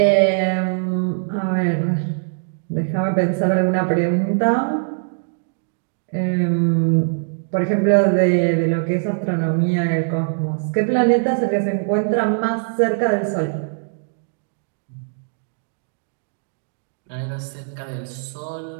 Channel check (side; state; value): left; silent; digital silence